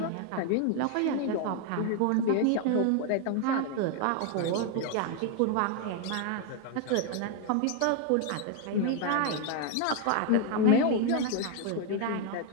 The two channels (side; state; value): both; different; correlation 0.01